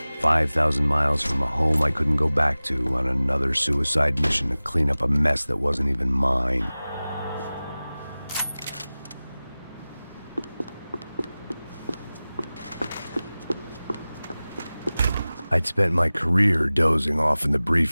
5,000 miles from a home I couldn't go back to, on another suicide mission to clean up a mess that wasn't even mine. I'd spent my career dozing off in the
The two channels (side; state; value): both; inverted; correlation -0.98